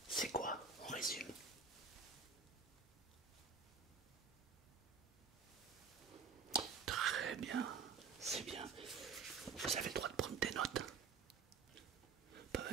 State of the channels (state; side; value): quieter; left; 5.3 dB